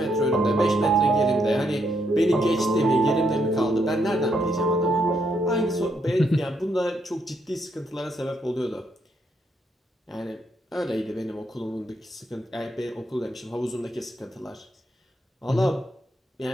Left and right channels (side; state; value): both; normal; correlation 0.76